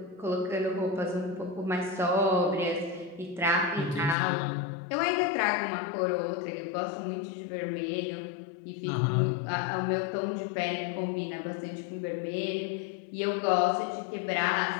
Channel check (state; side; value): drops out; right; at 4.2 s